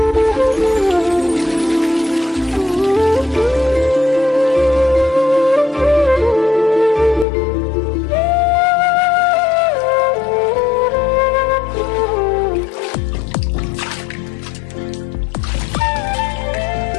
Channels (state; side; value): drops out; right; at 7.2 s